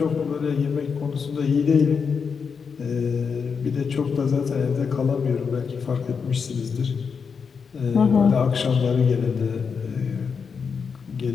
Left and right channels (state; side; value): quieter; right; 5.9 dB